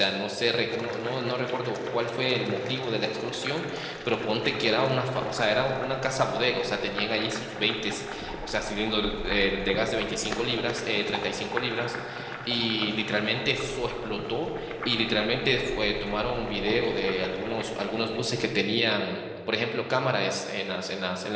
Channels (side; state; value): both; identical; correlation 1.00